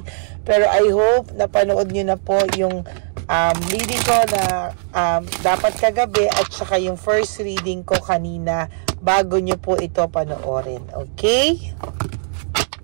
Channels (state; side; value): silent; left; digital silence